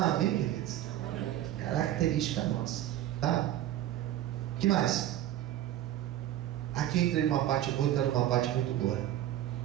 queridos? Característica nossa, tá? O que mais? Aqui entrei numa parte boa e está numa parte muito boa.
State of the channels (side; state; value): left; quieter; 12.8 dB